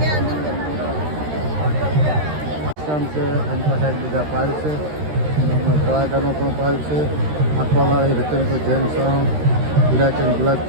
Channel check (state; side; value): late; left; 13 ms